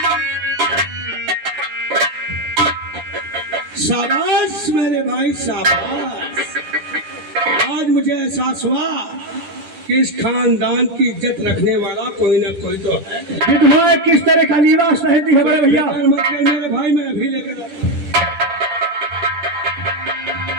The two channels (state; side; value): late; left; 10 ms